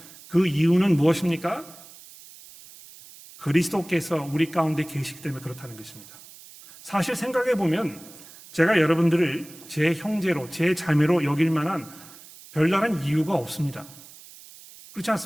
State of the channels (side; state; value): right; noise; hiss, 20 dB below the sound